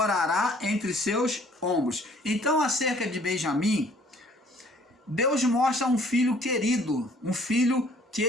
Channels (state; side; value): normal; both; correlation 0.57